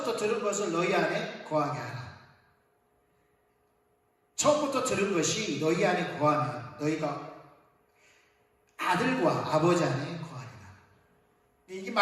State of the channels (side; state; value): both; identical; correlation 1.00